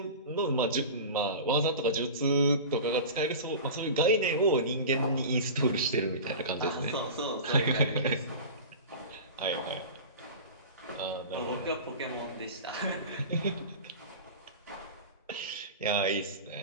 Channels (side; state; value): both; inverted; correlation -0.32